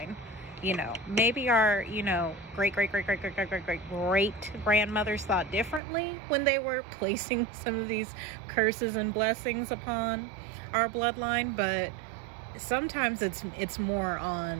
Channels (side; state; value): left; drops out; at 5.8 s